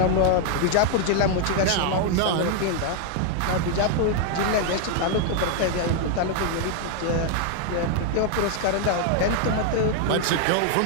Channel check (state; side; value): different; both; correlation 0.00